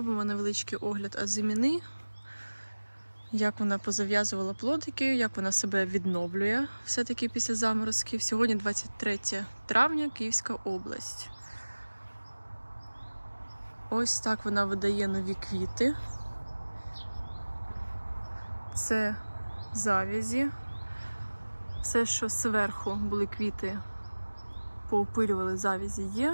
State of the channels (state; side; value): inverted; both; correlation -1.00